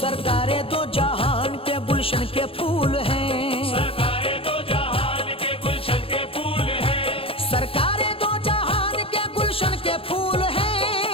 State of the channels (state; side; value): late; right; 0.27 ms